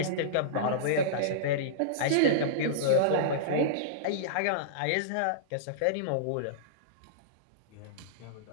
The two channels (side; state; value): both; different; correlation -0.03